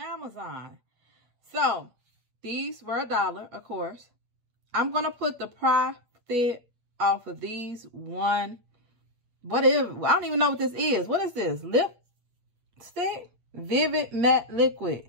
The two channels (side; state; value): left; late; 8.4 ms